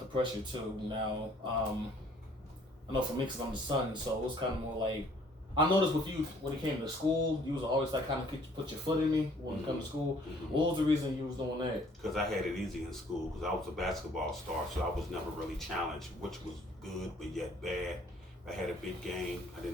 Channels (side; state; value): both; normal; correlation 0.59